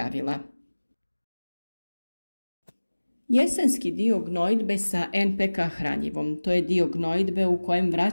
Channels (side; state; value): both; inverted; correlation -1.00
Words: Jesenski dio gnojidbe sa NPK hranjivom, to je dio gnojidbe u kojem